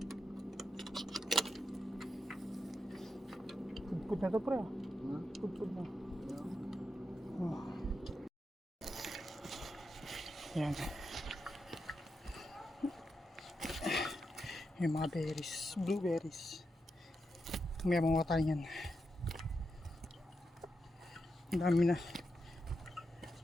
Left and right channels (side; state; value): both; normal; correlation 0.86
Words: Pud na to pre. Pud na. Oh. Ayan. Yung mga berries, blueberries. May mga tayo yan. Ang dami na.